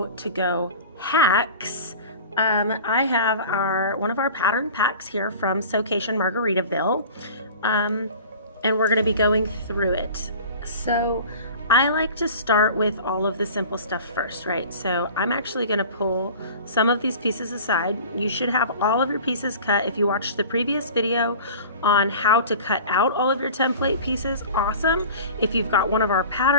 to go hacks. I have one of our pattern packs here from Sewcation Margaritaville, and we're going to be going through it. So I like to start with all of the simple stuff first, right? So I'm actually going to pull some of these pieces aside. You should have all of your pieces cut. If you watched the previous video on how to cut out all of your template pieces, awesome. If you've got one of our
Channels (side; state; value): both; inverted; correlation -0.40